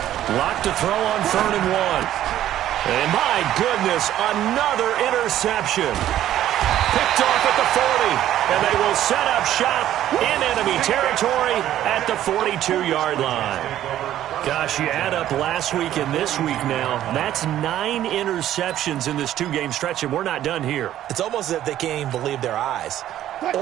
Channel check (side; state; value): left; quieter; 12.3 dB